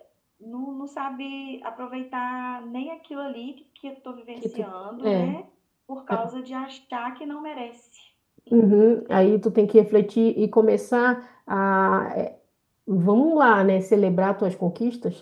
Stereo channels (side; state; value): both; identical; correlation 1.00